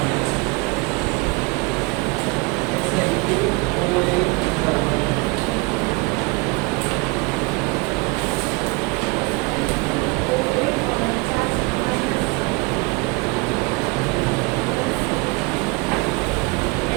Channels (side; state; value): left; quieter; 27.5 dB